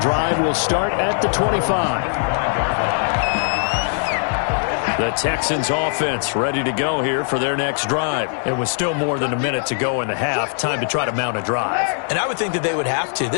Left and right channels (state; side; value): silent; right; digital silence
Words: drive will start at the 25. The Texans offense ready to go here for their next drive. It was still more than a minute to go in the half. Time to try to mount a drive. And I would think that they would have to.